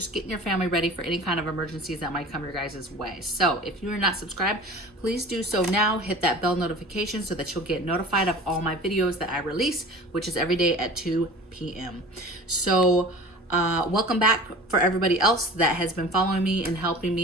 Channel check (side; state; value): both; normal; correlation 0.40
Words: getting your family ready for any kind of emergencies that might come your guys' way. So if you are not subscribed, please do so now. Hit that bell notification so that you'll get notified of all my videos that I release, which is every day at 2 p.m. So welcome back for everybody else that has been following me and helping